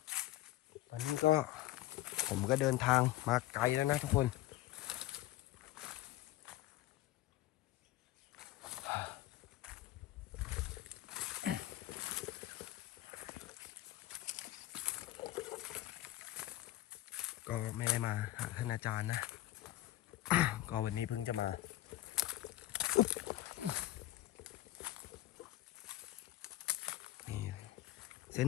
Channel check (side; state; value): right; quieter; 15.6 dB